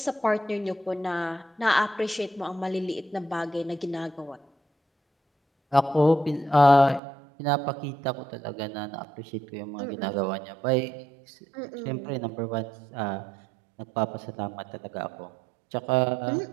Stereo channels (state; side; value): drops out; left; at 7.0 s